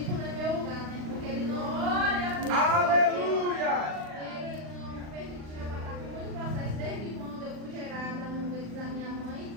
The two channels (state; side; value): late; left; 39 ms